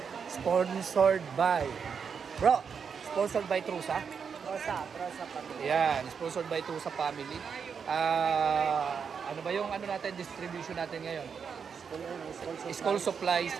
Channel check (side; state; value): left; quieter; 6.5 dB